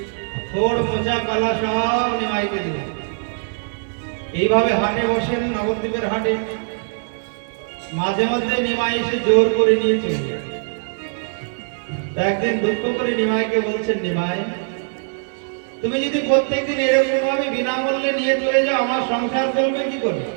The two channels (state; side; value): silent; left; digital silence